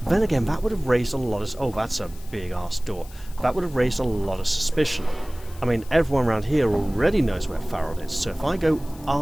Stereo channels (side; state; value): left; noise; hiss, 22 dB below the sound